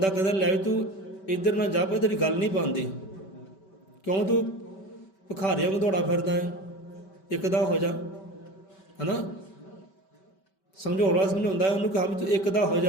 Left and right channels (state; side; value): late; right; 5.2 ms